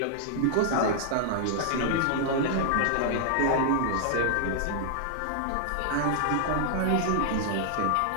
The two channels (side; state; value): both; different; correlation 0.00